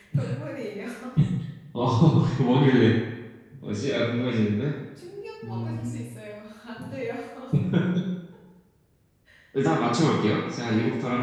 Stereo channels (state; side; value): identical; both; correlation 1.00